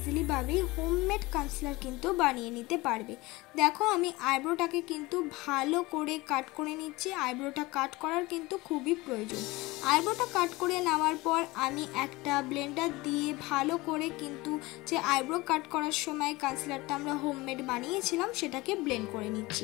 হোমমেড কনসিলার কিন্তু বানিয়ে নিতে পারবে। দেখো আমি আইব্রোটাকে কিন্তু ভালো করে কাট করে নিচ্ছি। আইব্রোটা কাট করার কিন্তু খুবই প্রয়োজন। আইব্রোটা কাট করে নেওয়ার পর আমি একটা ব্লেন্ডার দিয়ে ভালো করে কিন্তু যে আইব্রো কাট করার সময় কনসিলারটা আমরা হোমমেড বানিয়েছিলাম সেটাকে ব্লেন্ড করে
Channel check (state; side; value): quieter; right; 21.5 dB